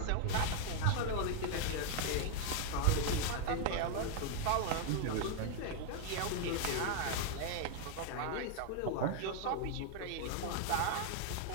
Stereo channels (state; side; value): different; both; correlation 0.00